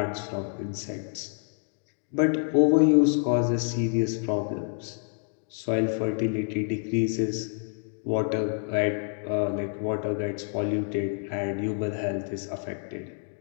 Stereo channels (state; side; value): silent; right; 59 dB below the other